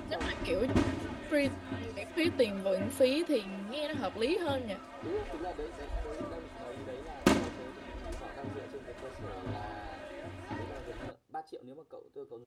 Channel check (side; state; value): both; identical; correlation 1.00